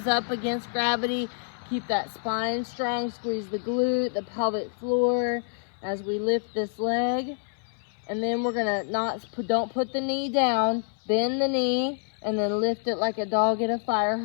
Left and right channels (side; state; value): right; silent; 60 dB below the other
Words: up against gravity. Keep that spine strong. Squeeze the glute, the pelvic floor as we lift this leg. And then we're going to don't put the knee down. Bend the knee and then lift it like a dog at a fire